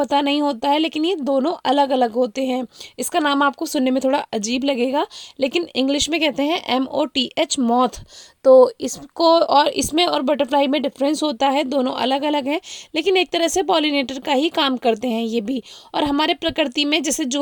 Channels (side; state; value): both; identical; correlation 1.00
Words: नहीं होता है, लेकिन ये दोनों अलग अलग होते हैं। इसका नाम आपको सुनने में थोड़ा अजीब लगेगा, लेकिन इंग्लिश में कहते हैं MOTH मॉथ। तो इसको और इसमें और बटरफ्लाई में डिफरेंस होता है, दोनों अलग अलग हैं, लेकिन एक तरह से पॉलिनेटर का ही काम करते हैं ये भी। और हमारे प्रकृति में जैसे